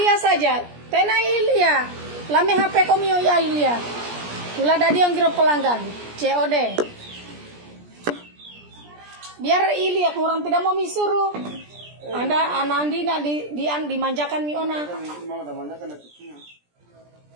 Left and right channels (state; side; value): late; left; 17 ms